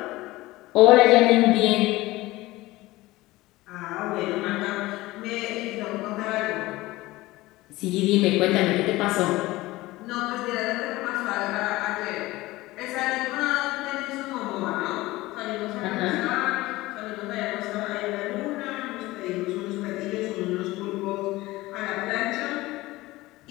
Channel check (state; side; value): quieter; right; 19.0 dB